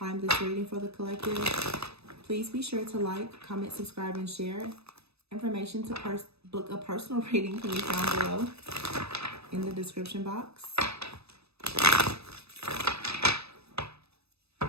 reading for the collective. Please be sure to like, comment, subscribe, and share. Information to book a personal reading can be found below in the description box.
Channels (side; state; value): left; late; 0.78 ms